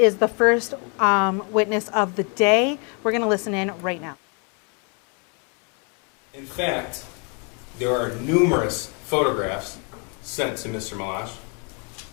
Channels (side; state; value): right; quieter; 35.8 dB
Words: the first witness of the day. We're going to listen in right now. In fact, there are numerous photographs sent to Mr. Malash.